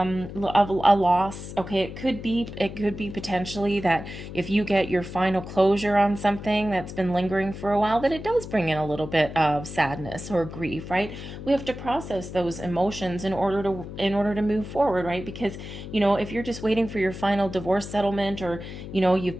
a loss. Okay, it could be potentially that if you get your final closure on something that's been lingering for a while, that it does bring in a little bit of sadness or grief, right? We have to process those emotions in order to move forward, right? Because if you're just waiting for your final divorce settlement, or you've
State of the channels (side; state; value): left; noise; hum, 11 dB below the sound